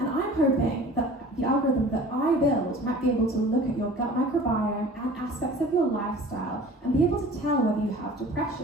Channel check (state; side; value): normal; both; correlation 0.44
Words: I'm hoping that the algorithm that I build might be able to look at your gut microbiome and aspects of your lifestyle and be able to tell whether you have